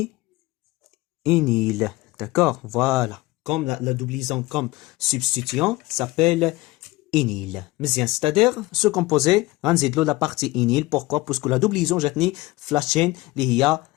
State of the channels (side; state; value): right; quieter; 20.1 dB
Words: ényl d'accord voilà comme la double liaison comme substituant s'appelle ényl مزيان c'est-à-dire ce composé غنزيدلو la partie ényl pourquoi parce que la double liaison جاتني في la chaîne اللي هي